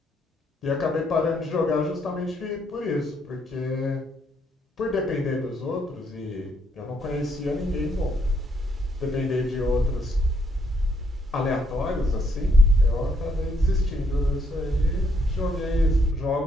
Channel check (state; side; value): normal; both; correlation 0.72